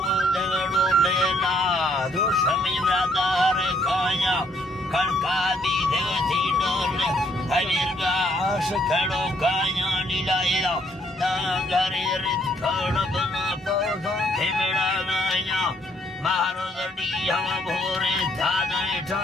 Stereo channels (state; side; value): normal; both; correlation 0.68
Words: वदगड़ो लेना दोषमी व्रतार काया कणका दीधे थी डोले हविर्गा आश खड़ो काया नीलायला नागरे रित खड़ बना पौधा खेमेड़ा गाया मारो दड़ी हवा भोरे धाने